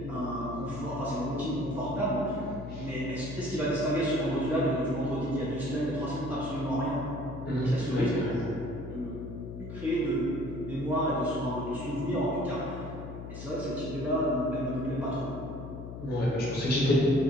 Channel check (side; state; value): left; noise; hum, 9 dB below the sound